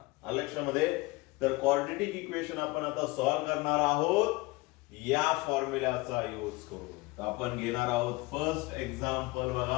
लक्षामध्ये, तर क्वाड्रेटिक इक्वेशन आपण आता सॉल्व्ह करणार आहोत या फॉर्म्युल्याचा यूज करून. तर आपण घेणार आहोत फर्स्ट एक्झाम्पल.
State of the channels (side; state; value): right; quieter; 22.7 dB